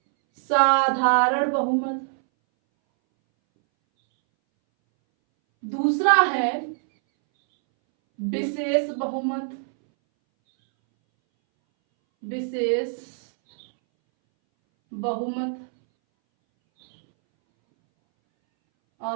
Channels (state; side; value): silent; left; 62 dB below the other